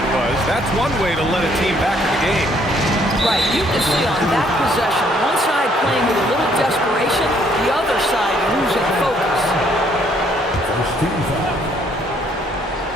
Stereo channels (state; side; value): normal; both; correlation 0.66